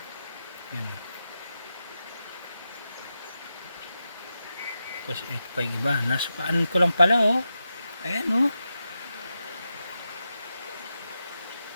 Yan. Tapos ito pa yung iba. Nasupaan ko lang pala, oh. Ayan, oh.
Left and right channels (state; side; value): inverted; both; correlation -0.89